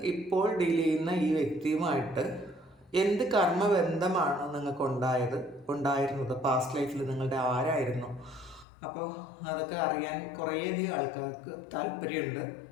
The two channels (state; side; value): drops out; right; at 8.7 s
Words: ഇപ്പോൾ ഡീൽ ചെയ്യുന്ന ഈ വ്യക്തിയുമായിട്ട് എന്ത് കർമ്മബന്ധമാണ് നിങ്ങൾക്ക് ഉണ്ടായിരുന്നത്, പാസ്റ്റ് ലൈഫിൽ നിങ്ങളുടെ ആരായിരുന്നു? അപ്പോൾ അതൊക്കെ അറിയാൻ കുറേയധികം ആൾക്കാർക്ക് താല്പര്യമുണ്ട്.